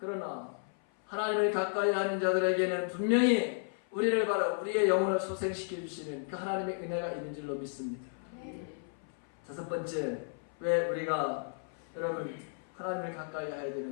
하나님을 가까이 하는 자들에게는 분명히 우리를 바로 우리의 영혼을 소생시켜 주시는 그 하나님의 은혜가 있는 줄로 믿습니다. 다섯 번째, 왜 우리가 여러분 하나님을 가까이 해야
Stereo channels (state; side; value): silent; right; 55 dB below the other